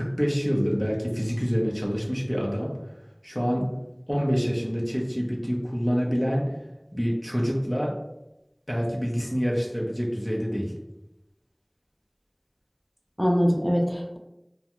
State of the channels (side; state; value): both; identical; correlation 1.00